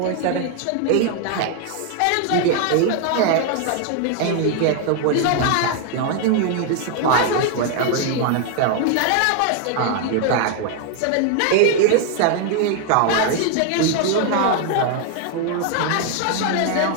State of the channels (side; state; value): both; different; correlation 0.00